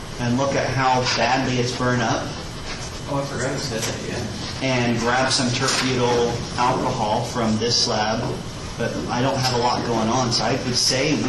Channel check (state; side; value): identical; both; correlation 1.00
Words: and look at how badly it's burned up Oh, I forgot to say that, yeah. and grab some terbutyl alcohol from this slab. But I don't have a lot going on, so I would say